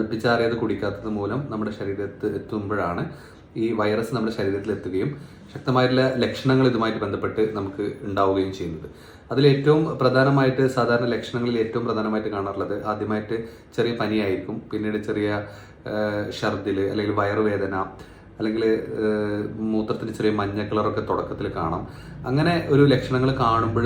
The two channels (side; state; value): both; identical; correlation 1.00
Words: കുടിക്കാത്തത് മൂലം നമ്മുടെ ശരീരത്തിൽ എത്തുമ്പോഴാണ് ഈ വൈറസ് നമ്മുടെ ശരീരത്തിൽ എത്തുകയും ശക്തമായിട്ടുള്ള ലക്ഷണങ്ങൾ ഇതുമായിട്ട് ബന്ധപ്പെട്ട് നമുക്ക് ഉണ്ടാവുകയും ചെയ്യുന്നത്. അതിലേറ്റവും പ്രധാനമായിട്ട് സാധാരണ ലക്ഷണങ്ങളിൽ ഏറ്റവും പ്രധാനമായിട്ട് കാണാറുള്ളത് ആദ്യമായിട്ട് ചെറിയ പനിയായിരിക്കും, പിന്നീട് ചെറിയ ഛർദിൽ അല്ലെങ്കിൽ വയറുവേദന, അല്ലെങ്കിൽ മൂത്രത്തിന് ചെറിയ മഞ്ഞ കളറൊക്കെ തുടക്കത്തിൽ കാണാം. അങ്ങനെ ഒരു ലക്ഷണങ്ങൾ കാണുമ്പോൾ